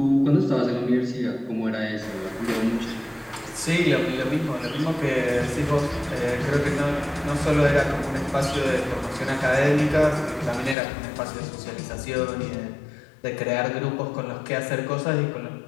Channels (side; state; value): right; drops out; at 10.8 s